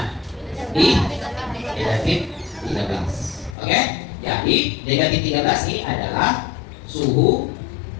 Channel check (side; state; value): right; drops out; at 3.6 s